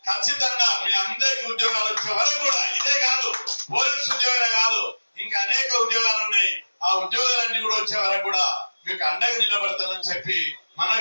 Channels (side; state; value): both; inverted; correlation -1.00